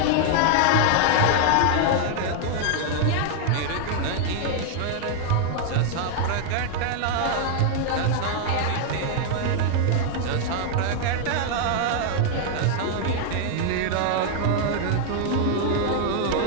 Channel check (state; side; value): different; both; correlation 0.00